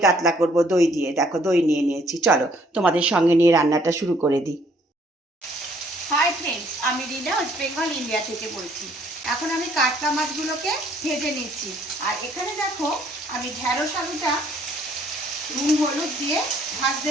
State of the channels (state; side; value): normal; both; correlation 0.63